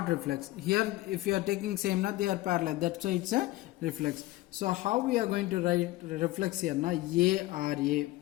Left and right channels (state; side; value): quieter; right; 18.1 dB